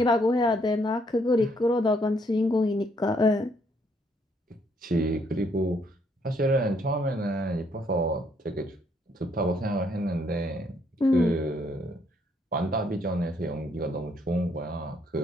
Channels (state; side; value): normal; both; correlation 0.70